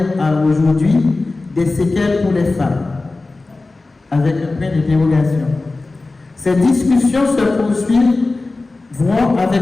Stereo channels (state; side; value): quieter; right; 3.4 dB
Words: à aujourd'hui, des séquelles pour les femmes », avec un point d'interrogation. Ces discussions se poursuivront avec